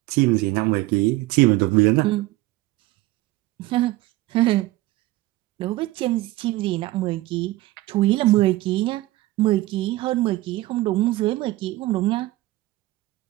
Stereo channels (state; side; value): quieter; left; 18.2 dB